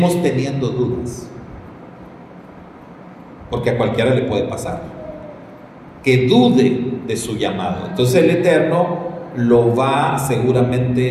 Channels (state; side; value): identical; both; correlation 1.00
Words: teniendo dudas, porque a cualquiera le puede pasar que dude de su llamado. Entonces el Eterno lo va